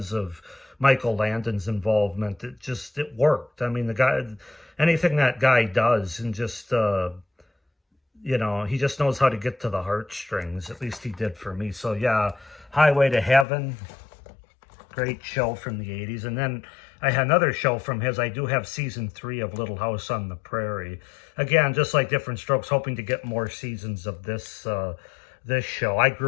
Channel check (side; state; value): right; drops out; at 13.5 s